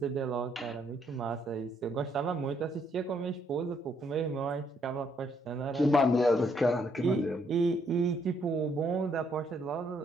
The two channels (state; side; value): normal; both; correlation 0.71